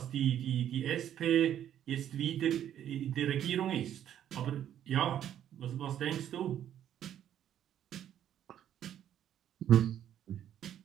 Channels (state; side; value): quieter; left; 10.6 dB